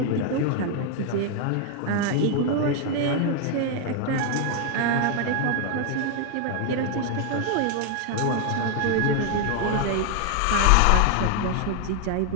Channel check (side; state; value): both; different; correlation 0.00